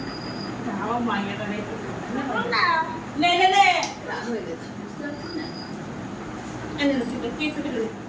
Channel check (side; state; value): both; identical; correlation 1.00